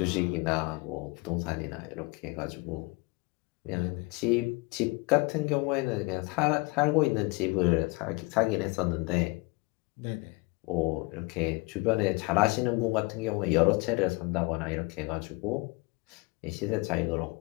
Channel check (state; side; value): quieter; right; 26.5 dB